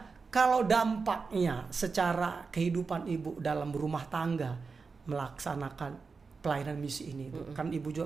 kalau dampaknya secara kehidupan Ibu dalam rumah tangga melaksanakan pelayanan misi ini, kan Ibu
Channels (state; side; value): quieter; left; 4.7 dB